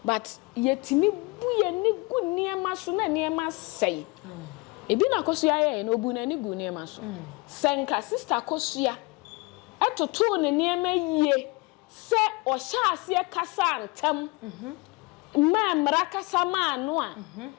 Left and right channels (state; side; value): quieter; right; 26.6 dB